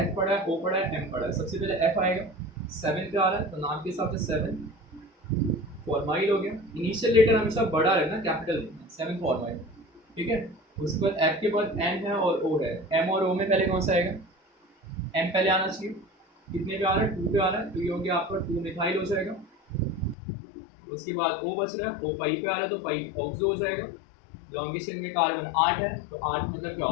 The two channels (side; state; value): right; drops out; at 20.2 s